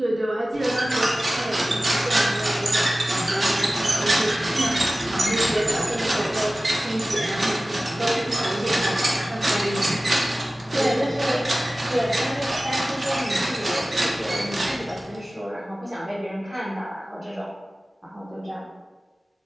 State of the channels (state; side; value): normal; both; correlation 0.97